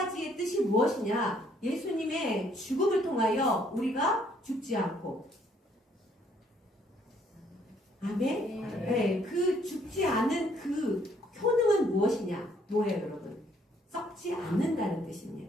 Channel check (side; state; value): both; normal; correlation 0.66